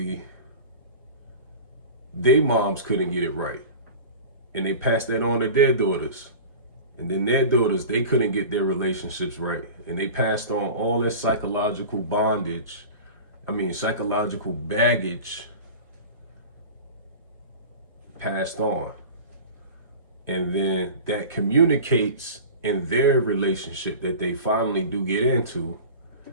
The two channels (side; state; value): both; inverted; correlation -0.35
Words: they moms couldn't get it right. And they passed that on to their daughters. And then their daughters, they couldn't get their relationships right. And they passed on all that psychological baggage passed on. And then that communicates in their relationship that they finally do get into.